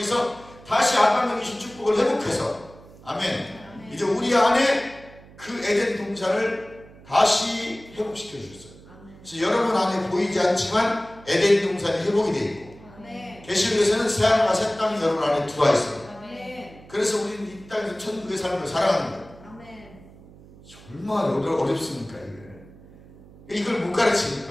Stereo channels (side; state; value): right; noise; hum, 22 dB below the sound